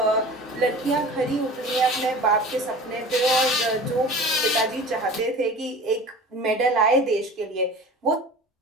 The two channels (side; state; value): both; normal; correlation 0.39